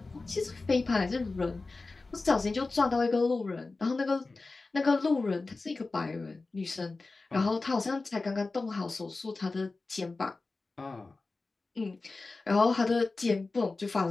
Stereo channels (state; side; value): quieter; right; 3.6 dB